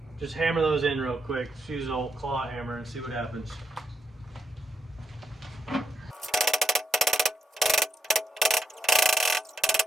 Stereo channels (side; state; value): both; normal; correlation 0.82